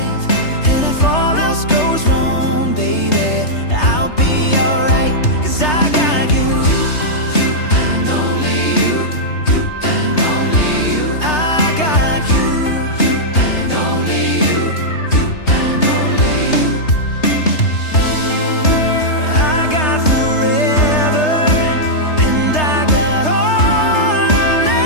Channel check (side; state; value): right; late; 3.3 ms